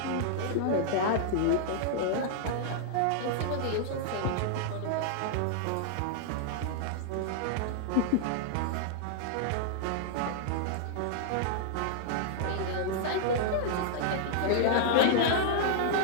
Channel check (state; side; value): different; both; correlation -0.01